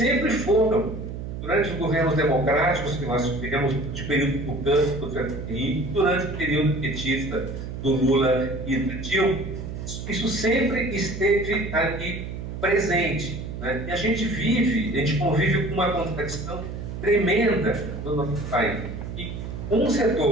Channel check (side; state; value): right; noise; hum, 7 dB below the sound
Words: foram. Durante os governos democráticos que nós tivemos, de período tucano do Fernando Henrique, durante o período petista do Lula e do Dilma, isso sempre esteve ali presente. Né? E a gente convive com uma contradição tremenda no nosso país. E um